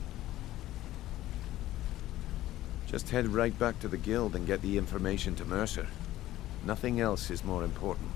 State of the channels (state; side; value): quieter; right; 14.9 dB